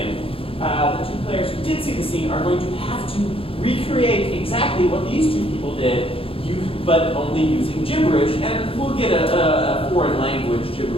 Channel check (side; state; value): right; late; 0.27 ms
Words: The 2 players who did see the scene are going to have to recreate exactly what these 2 people did, but only using gibberish, and we'll get a foreign language